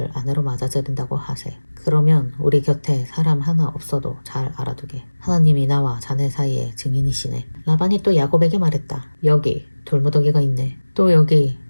아내로 맞아들인다고 하세. 그러면 우리 곁에 사람 하나 없어도 잘 알아두게. 하나님이 나와 자네 사이의 증인이시네. 라반이 또 야곱에게 말했다. 여기 돌무더기가 있네. 또 여기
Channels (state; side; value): inverted; both; correlation -1.00